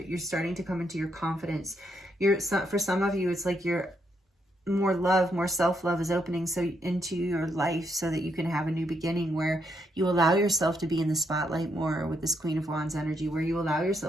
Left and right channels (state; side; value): normal; both; correlation 0.77